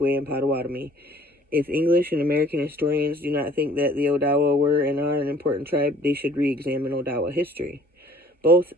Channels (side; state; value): both; normal; correlation 0.54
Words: and Potawatomi. If English and American historians do not think that the Odawa were and are an important tribe, they should re-examine Odawa history. Both